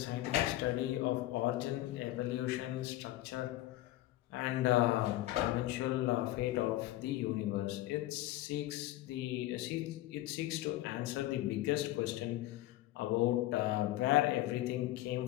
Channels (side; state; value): right; quieter; 16.0 dB